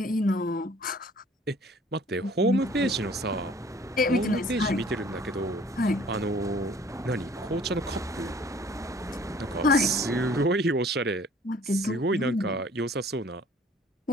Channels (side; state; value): both; normal; correlation 0.54